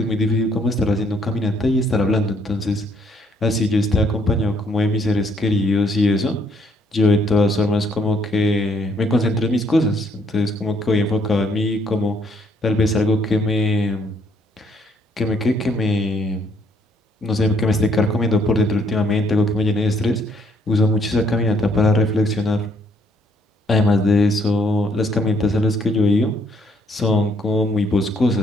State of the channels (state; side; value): normal; both; correlation 0.68